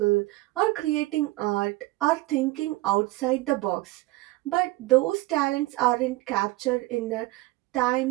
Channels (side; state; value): left; quieter; 19.8 dB